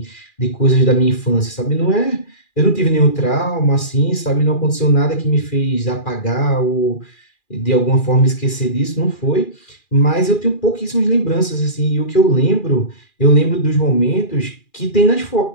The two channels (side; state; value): right; late; 2.4 ms